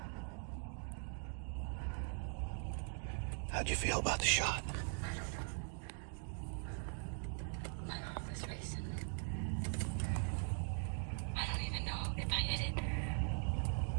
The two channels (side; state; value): left; silent; 50 dB below the other